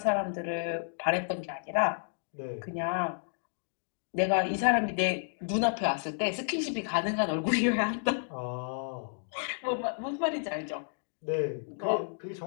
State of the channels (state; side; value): silent; right; digital silence